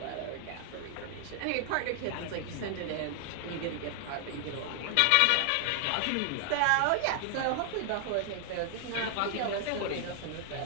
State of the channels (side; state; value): both; different; correlation 0.00